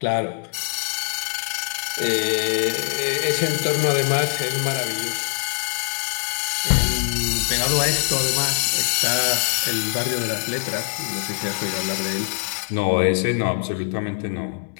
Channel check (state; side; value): silent; right; 64 dB below the other